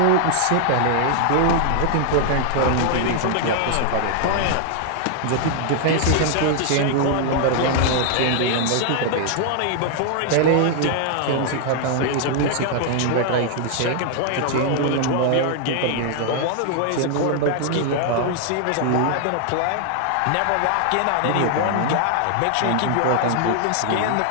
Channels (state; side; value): different; both; correlation 0.00